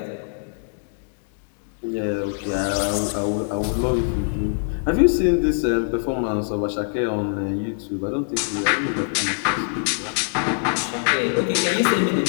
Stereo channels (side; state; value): right; silent; 63 dB below the other